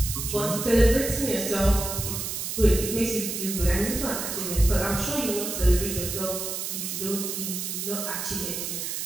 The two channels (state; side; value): noise; right; hiss, 4 dB below the sound